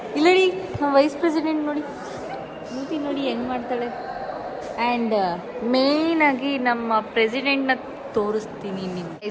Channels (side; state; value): both; identical; correlation 1.00